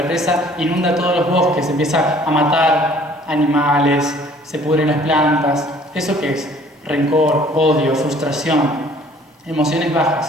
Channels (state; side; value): normal; both; correlation 0.55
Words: inunda todos los bosques, se empieza a matar animales, se pudren las plantas. ¿Eso qué es? Rencor, odio, frustración, emociones